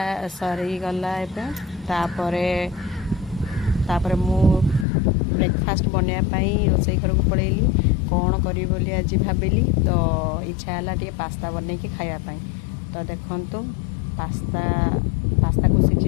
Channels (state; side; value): drops out; right; at 4.9 s